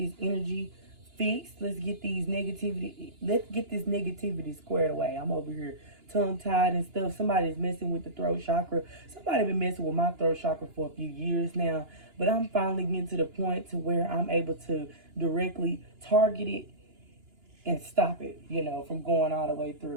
energy fixed. Let's get this negativity squared away. I'm over here tongue-tied and stuff. Somebody's messing with the throat chakra. Somebody been messing with my throat chakra for a few years now, but I'm finally getting to the point to where I'm able to directly target it and stop it, from going all the way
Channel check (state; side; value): late; left; 2.9 ms